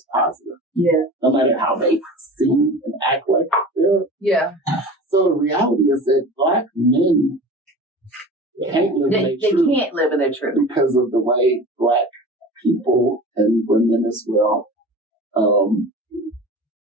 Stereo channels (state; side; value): normal; both; correlation 0.36